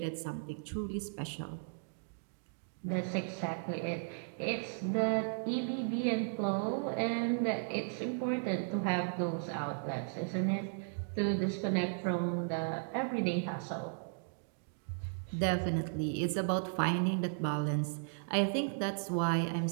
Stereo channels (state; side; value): silent; left; digital silence